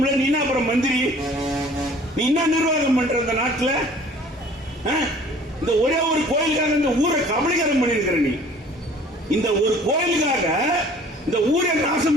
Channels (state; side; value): normal; both; correlation 0.51